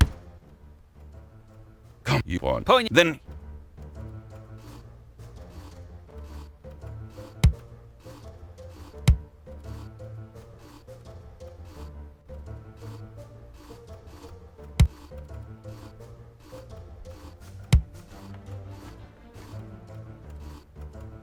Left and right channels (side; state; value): both; identical; correlation 1.00